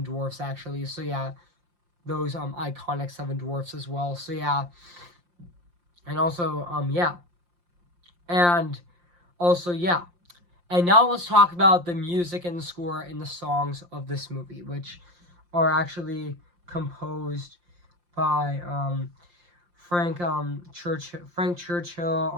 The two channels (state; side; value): late; left; 5.7 ms